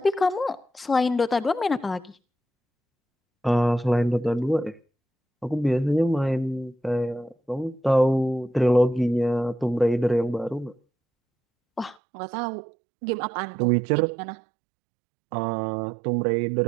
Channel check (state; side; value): drops out; left; at 12.0 s